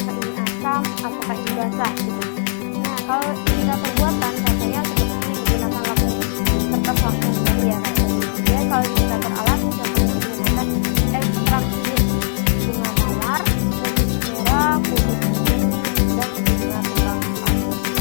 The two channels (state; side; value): silent; right; 66 dB below the other